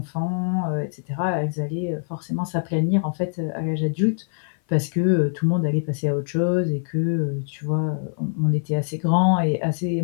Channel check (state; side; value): silent; right; 56 dB below the other